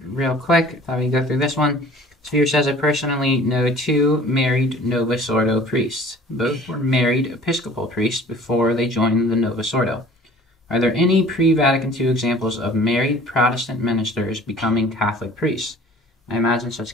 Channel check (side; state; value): both; normal; correlation 0.48